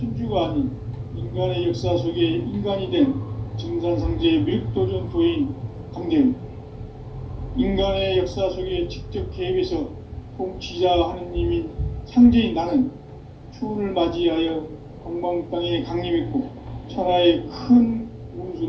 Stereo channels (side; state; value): both; identical; correlation 1.00